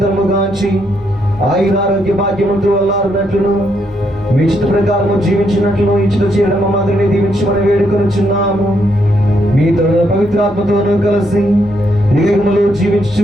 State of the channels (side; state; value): both; normal; correlation 0.76